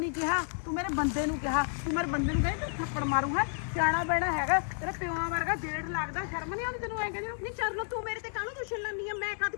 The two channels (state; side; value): silent; right; 57 dB below the other